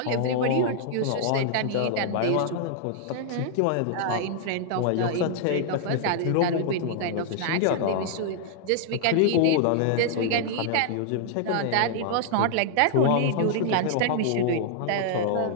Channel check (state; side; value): different; both; correlation -0.01